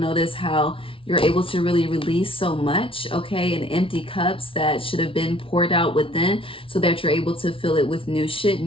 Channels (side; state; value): right; late; 0.26 ms